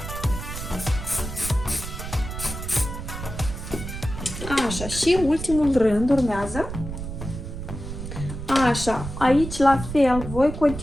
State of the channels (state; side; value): noise; right; rumble, 8 dB below the sound